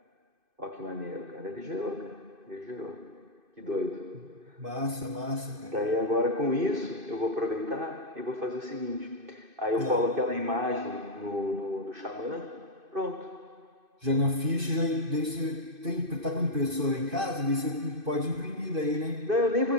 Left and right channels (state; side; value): late; left; 2.5 ms